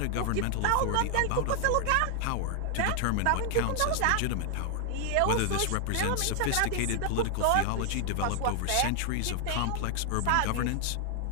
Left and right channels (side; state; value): both; different; correlation 0.00